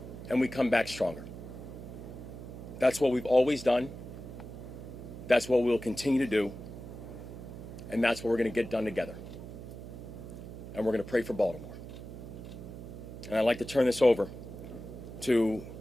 and we come back stronger. That's what we've always done. That's what we'll continue to do. And that's what we're going to get done together. And we're going to pray for Baltimore. And I'd like to turn this over to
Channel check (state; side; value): noise; right; hum, 11 dB below the sound